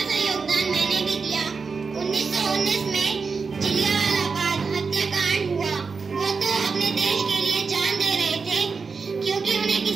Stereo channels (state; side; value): quieter; left; 5.0 dB